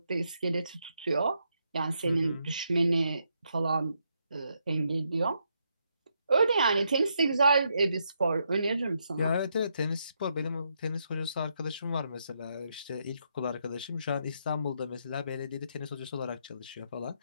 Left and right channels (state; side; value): inverted; both; correlation -0.78